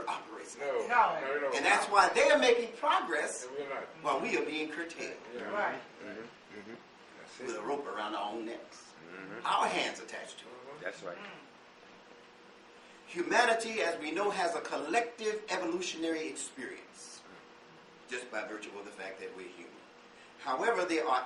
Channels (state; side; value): identical; both; correlation 1.00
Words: operates like No. that. No. And that's why they are making progress And we're not. while we are being curtailed Yeah. Right. That's with a it. rope around our own necks. Our hands attached to it. That's right. Humanity, as we know, has a collective evolutionary experience just by virtue of the fact that we're human. However, there